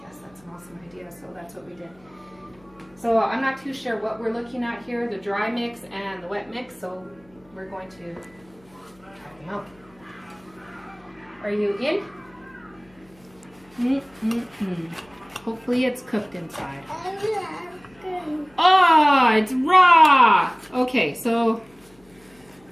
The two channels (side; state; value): left; noise; hum, 29 dB below the sound